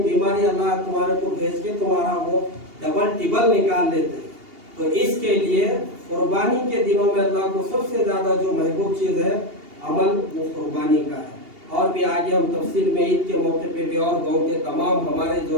अल्लाह तुम्हारे को भेज के तुम्हारा वो डबल टिबल निकाल लेते। तो इसके लिए कुर्बानी के दिनों में अल्लाह को सबसे ज्यादा जो महबूब चीज है अमल, वो कुर्बानी का है। और भी आगे हम तफसील में ईद के मौके पे भी और गाँव के तमाम हमारे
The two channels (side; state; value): left; late; 2.8 ms